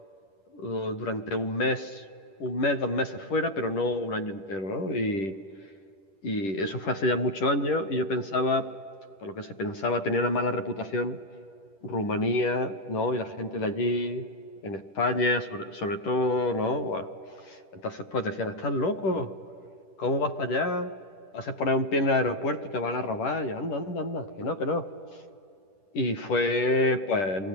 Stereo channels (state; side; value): late; right; 10 ms